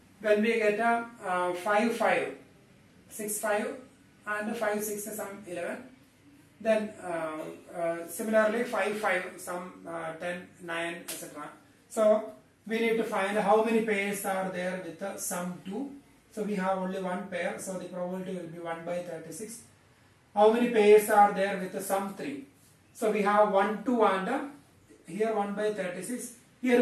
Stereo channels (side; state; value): both; identical; correlation 1.00